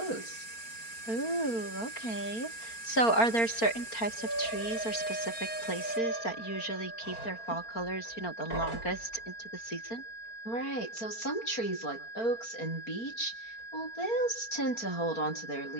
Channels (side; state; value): right; late; 4.4 ms